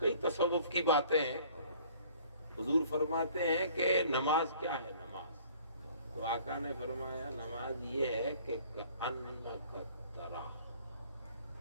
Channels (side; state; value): both; inverted; correlation -0.53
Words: تصوف کی باتیں ہیں. حضور فرماتے ہیں کہ نماز کیا ہے. نماز تو آقا نے فرمایا نماز یہ ہے کہ انک ترا,